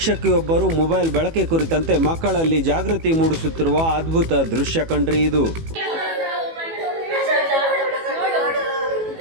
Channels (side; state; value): left; late; 18 ms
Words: mobile ಬಳಕೆ ಕುರಿತಂತೆ ಮಕ್ಕಳಲ್ಲಿ ಜಾಗೃತಿ ಮೂಡಿಸುತ್ತಿರುವ ಅದ್ಭುತ ದೃಶ್ಯ ಕಂಡ್ರಿ ಇದು.